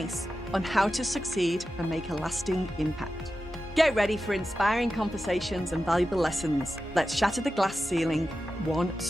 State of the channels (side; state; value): both; normal; correlation 0.92